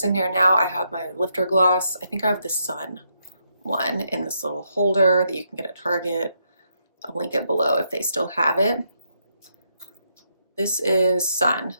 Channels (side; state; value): both; inverted; correlation -0.78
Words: in here now, I have my lifter gloss. I think I have the Sun one in this little holder that you can get at Target. I'll link it below if they still have it. This is Sun,